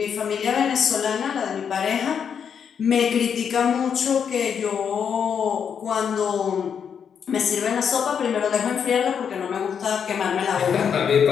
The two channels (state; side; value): quieter; right; 7.4 dB